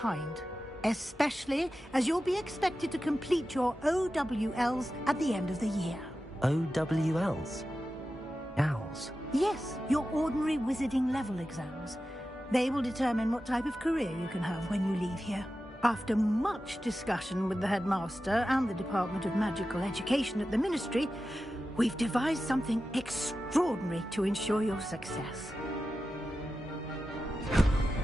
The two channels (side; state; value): both; normal; correlation 0.92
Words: Especially as you'll be expected to complete your OWLs at the end of the year. OWLs? Owls? Yes, your ordinary wizarding level exams. They will determine what type of career you can have when you leave here. After much discussion with the headmaster and the Department of Magical Education at the Ministry, we've devised something extraordinary to ensure your success.